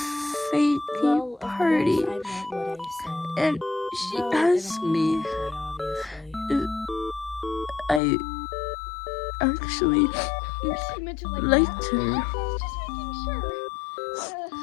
fake party, and she asked me if I actually liked her.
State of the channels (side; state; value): right; drops out; at 8.0 s